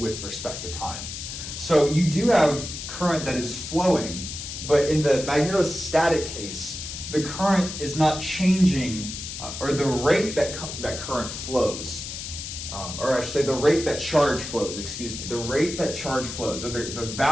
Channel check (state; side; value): noise; left; hiss, 8 dB below the sound